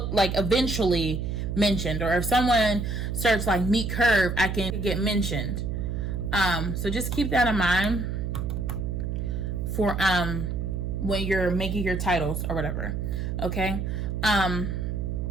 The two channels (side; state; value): right; noise; hum, 2 dB below the sound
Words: mentioned. Or if someone searches like meat curve, I can get mentioned. So just keep that in mind for when you're making your titles or whatever. Okay.